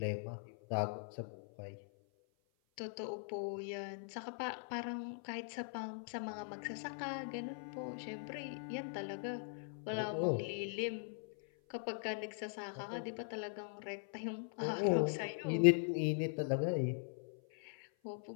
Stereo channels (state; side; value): silent; right; 50 dB below the other